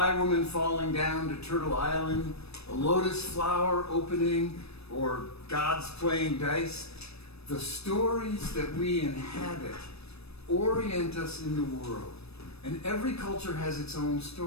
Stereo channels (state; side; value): late; right; 0.78 ms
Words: Woman falling down to Turtle Island, a lotus flower opening, or gods playing dice, the stories that we inhabit orient us in the world. And every culture has its own